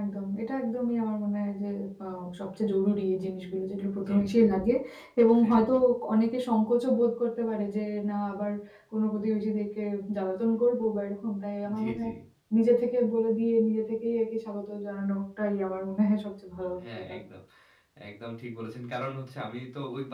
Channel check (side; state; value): both; identical; correlation 1.00